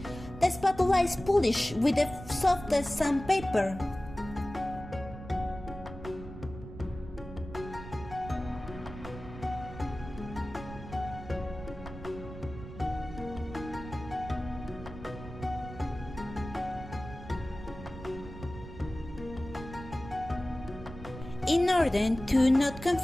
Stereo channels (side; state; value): right; noise; rumble, 12 dB below the sound